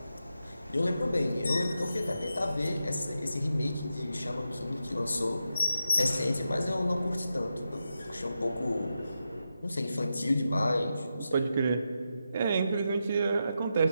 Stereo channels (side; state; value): both; inverted; correlation -0.88